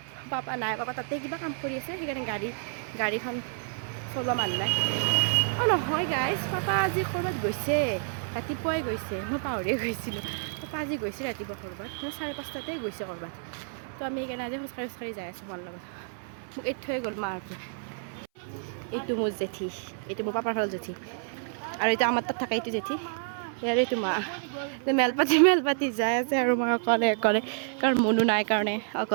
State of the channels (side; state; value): left; silent; 58 dB below the other